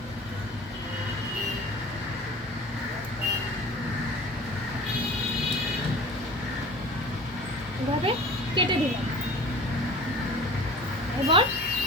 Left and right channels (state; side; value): normal; both; correlation 0.41